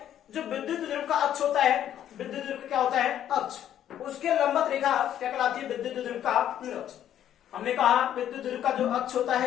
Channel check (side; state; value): right; quieter; 10.8 dB